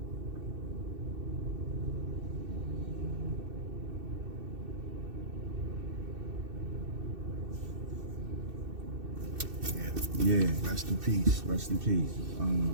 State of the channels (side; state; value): left; late; 2.6 ms